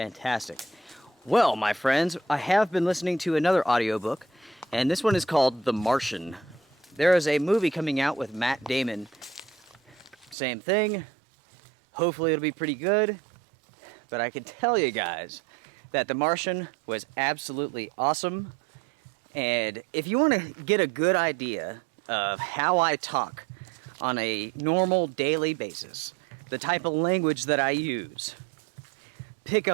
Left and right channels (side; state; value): left; drops out; at 10.4 s